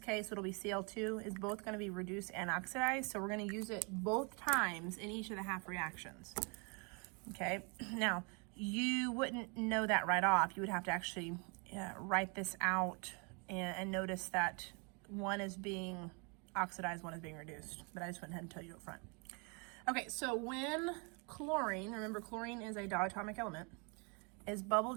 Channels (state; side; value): quieter; left; 34.0 dB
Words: it'll be Cl2, is both going to be reduced and oxidized, so we're going to use it both times in each of the half reactions. Okay, now you wouldn't know that right off. You would have to actually write this out and notice that one is being oxidized, one is being reduced, but I just went ahead and tell you up front. Okay, so when chlorine, remember chlorine is a diatomic element, is bubbled